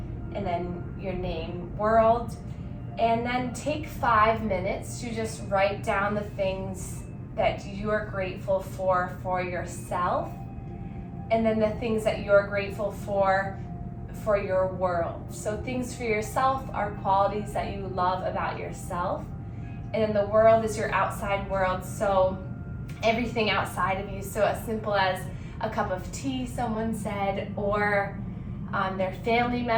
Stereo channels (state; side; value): identical; both; correlation 1.00